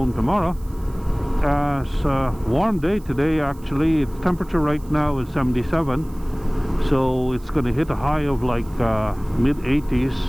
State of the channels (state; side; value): noise; right; hiss, 26 dB below the sound